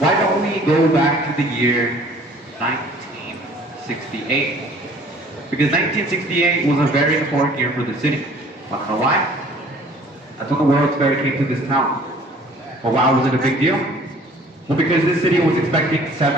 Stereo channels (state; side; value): normal; both; correlation 0.52